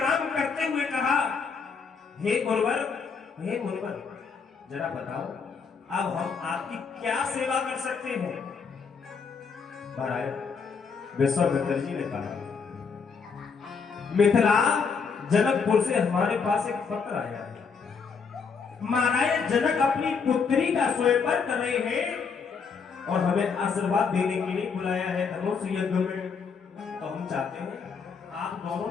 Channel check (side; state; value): right; quieter; 5.6 dB